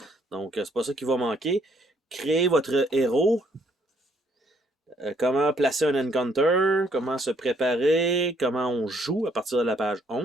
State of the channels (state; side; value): normal; both; correlation 0.68